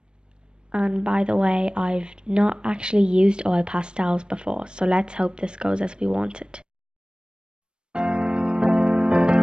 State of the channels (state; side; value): late; left; 0.052 ms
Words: And by the way, I've not actually used oil pastels before, so let's hope this goes as we want it.